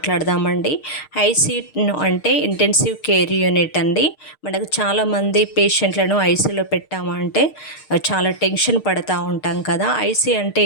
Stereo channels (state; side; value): late; right; 6.5 ms